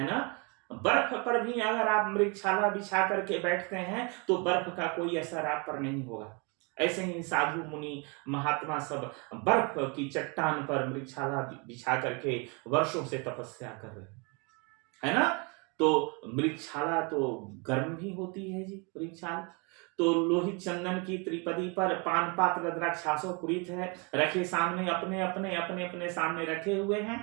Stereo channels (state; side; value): quieter; left; 31.9 dB